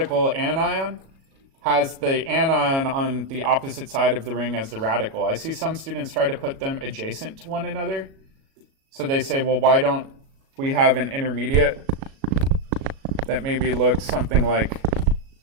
anion has the anion on the opposite side of the ring as the radical. I see some students try to put them adjacent to one another. So they say, well, why don't we have an intermediate that maybe looks something like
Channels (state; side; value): late; left; 37 ms